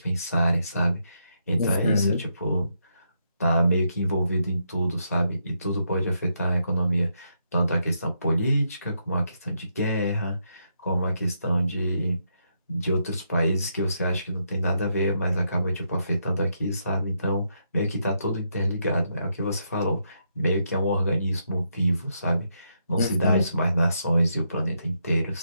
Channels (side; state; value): both; inverted; correlation -0.79